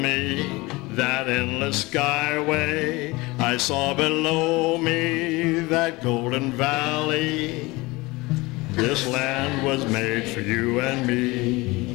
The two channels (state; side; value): quieter; right; 22.7 dB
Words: that endless skyway. I saw below me that golden valley. This land was made for you and